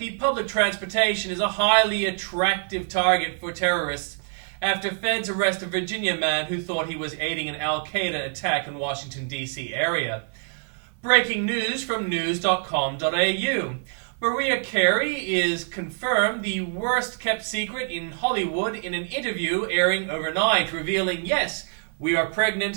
public transportation is a highly attractive target for terrorists after feds arrest a Virginia man who thought he was aiding an Al-Qaeda attack in Washington, D.C. area. Breaking news from news.com.au. Mariah Carey is confirmed the worst kept secret in Hollywood in an interview airing overnight, revealing, yes, we are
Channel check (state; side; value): silent; left; 62 dB below the other